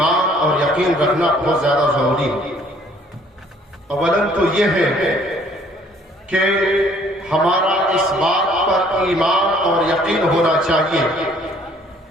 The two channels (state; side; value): normal; both; correlation 0.60